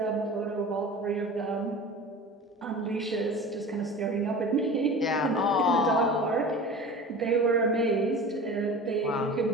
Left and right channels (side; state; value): both; normal; correlation 0.36